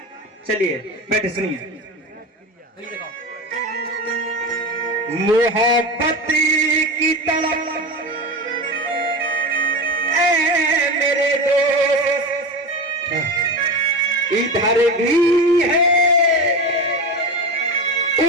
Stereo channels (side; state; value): both; normal; correlation 0.24